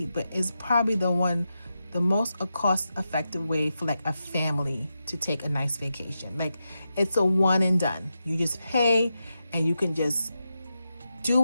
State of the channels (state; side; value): inverted; both; correlation -0.88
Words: but it's probably the one the most cost-effective way for like a family to take a nice vacation. Like, it's a one and done. You just pay and you can just do